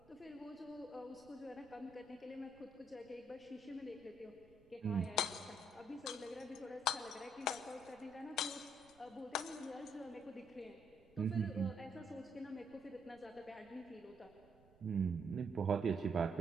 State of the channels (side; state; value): right; noise; rumble, 26 dB below the sound